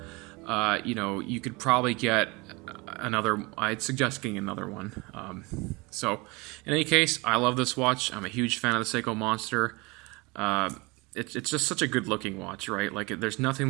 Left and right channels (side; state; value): left; quieter; 25.7 dB